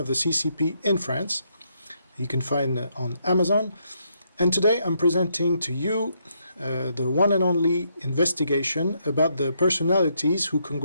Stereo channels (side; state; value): both; inverted; correlation -0.76